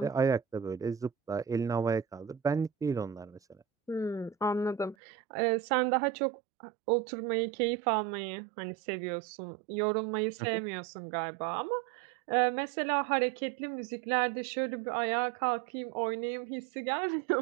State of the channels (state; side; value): drops out; left; at 5.0 s